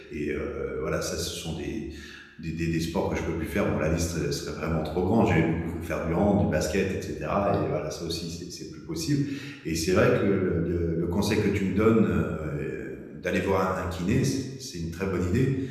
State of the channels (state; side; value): identical; both; correlation 1.00